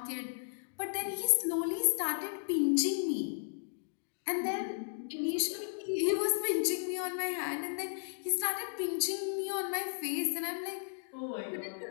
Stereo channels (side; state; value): right; silent; digital silence